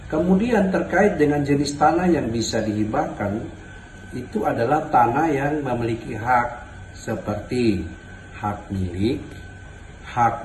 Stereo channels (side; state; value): both; identical; correlation 1.00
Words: Kemudian terkait dengan jenis tanah yang bisa dihibahkan, itu adalah tanah yang memiliki hak seperti hak milik,